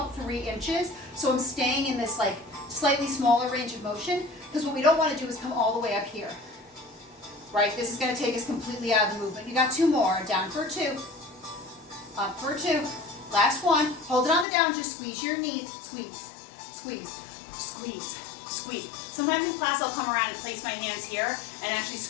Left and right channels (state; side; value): drops out; right; at 14.5 s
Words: 3 inches. So I'm staying in this like slightly smaller range of motion, because what we don't want to do is come all the way up here. Right? This is going to take us completely out of the movement. You got 2 more. Down for 2, up for 2. Last one. Hold it on the down. Just squeeze your knees. Squeeze, squeeze, squeeze, squeeze. Sometimes in class I'll come around and place my hands here and actually